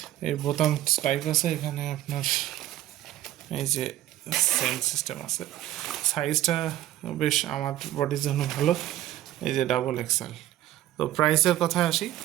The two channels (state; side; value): quieter; left; 13.7 dB